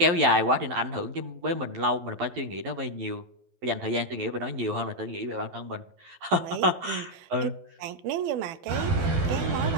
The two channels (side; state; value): left; late; 12 ms